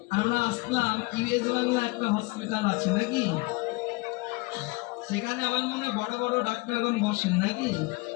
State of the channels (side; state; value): right; quieter; 24.9 dB